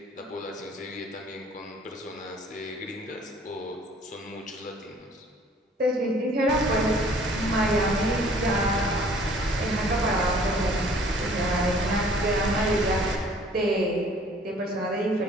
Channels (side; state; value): both; normal; correlation 0.55